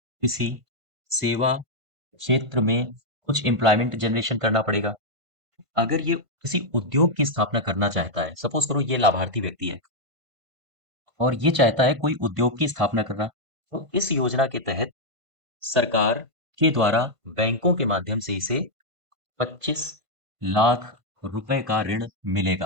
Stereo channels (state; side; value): late; left; 1.5 ms